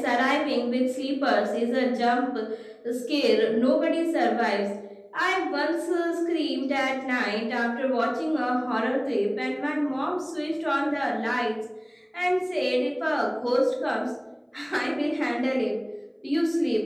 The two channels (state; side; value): identical; both; correlation 1.00